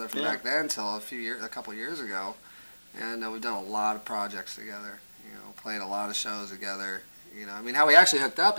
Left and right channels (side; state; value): both; inverted; correlation -1.00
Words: from back then until a couple years ago, and we've done a lot of projects together. You know, played a lot of shows together. You know, I mean, how we actually hooked up